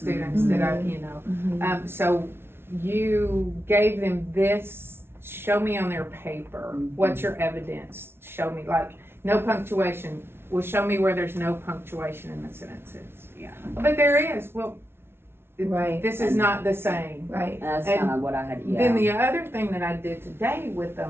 that I, Mhm. so you gave them this show me on their paper, what's your evidence? Show me, like, no punctuation. Well, show me where there's no punctuation in the sentences. Yeah. But there is, well, Right. this is not the same. Right. That's And kind of what I had, yeah. Then the other thing that I did today with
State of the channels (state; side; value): late; left; 0.12 ms